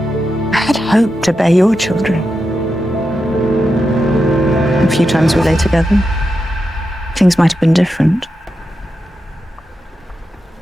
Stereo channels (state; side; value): normal; both; correlation 0.88